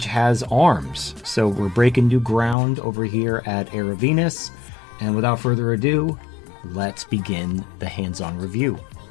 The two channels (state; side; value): drops out; right; at 2.6 s